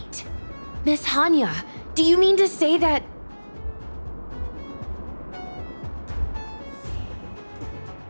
Miss Hanya, do you mean to say that...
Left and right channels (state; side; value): inverted; both; correlation -1.00